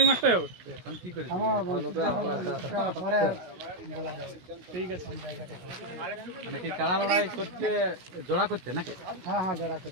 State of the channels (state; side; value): late; left; 16 ms